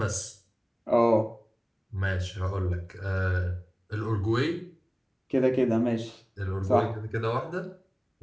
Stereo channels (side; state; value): both; identical; correlation 1.00